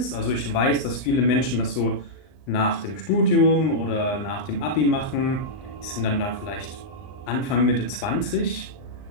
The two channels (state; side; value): late; right; 39 ms